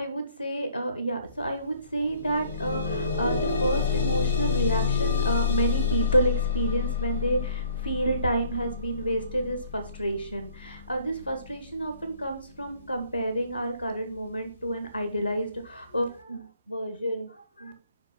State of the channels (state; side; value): inverted; both; correlation -0.58